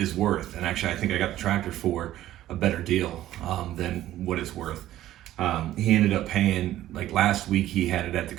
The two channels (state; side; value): quieter; left; 13.7 dB